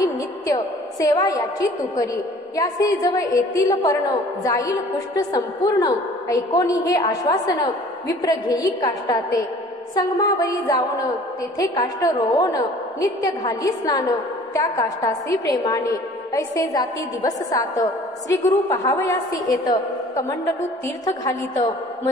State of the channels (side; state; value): both; normal; correlation 0.50